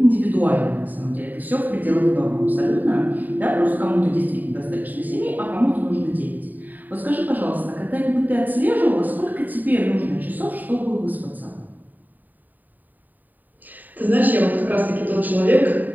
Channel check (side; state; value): left; late; 0.086 ms